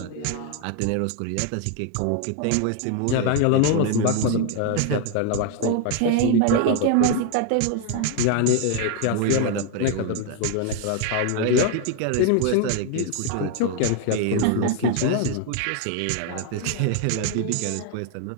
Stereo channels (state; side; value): different; both; correlation 0.01